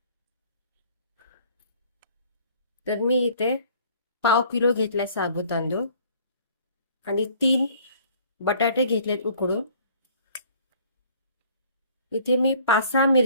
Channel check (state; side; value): inverted; both; correlation -0.54